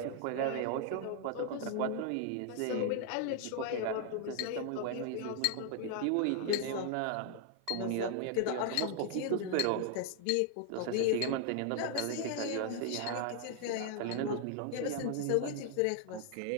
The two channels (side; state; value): both; different; correlation 0.00